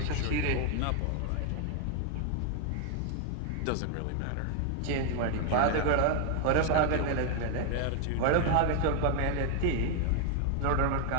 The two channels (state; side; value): different; both; correlation 0.00